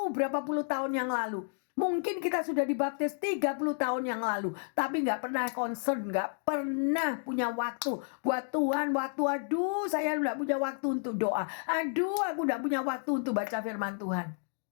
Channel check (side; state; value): right; silent; 57 dB below the other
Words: berapa puluh tahun yang lalu. Mungkin kita sudah dibaptis 30 tahun yang lalu. Tapi gak pernah concern, gak pernah punya waktu. Buat Tuhan waktu, aduh saya gak punya waktu untuk doa. Aduh aku gak punya waktu untuk baca firman Tuhan.